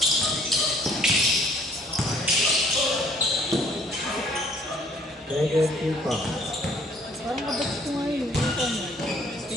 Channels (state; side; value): normal; both; correlation 0.60